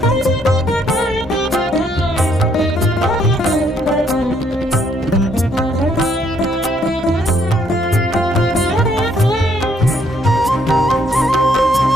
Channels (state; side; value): normal; both; correlation 0.69